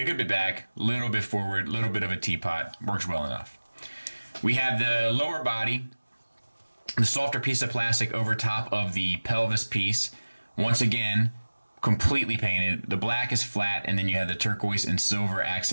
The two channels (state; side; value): inverted; both; correlation -1.00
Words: good bit back, a little bit forward, a little bit of a teapot. Works well enough. We have the lower body, the softer piece of plastic over top of the pelvis piece. Once again, completely painted. The black is flat, and then you have the turquoise and silver